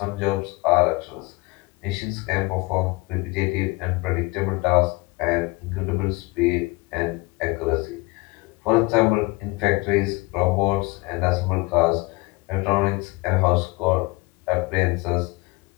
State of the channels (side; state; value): right; quieter; 24.3 dB